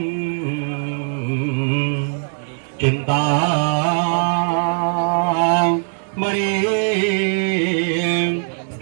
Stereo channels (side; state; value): left; silent; 66 dB below the other